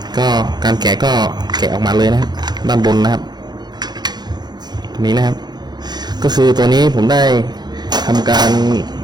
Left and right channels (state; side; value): late; left; 0.20 ms